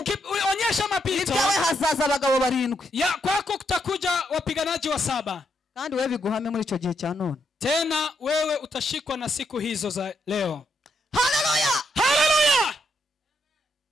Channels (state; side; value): normal; both; correlation 0.78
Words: mapito, ibyawe hazaza abagabo 7. ya kwako kutakuja wapiganaji wa 7. Kandi wewe biguhame muri icyo gihe cya none. Tena wewe utashikwa na siku hizo za leo. Hallelujah. Hallelujah.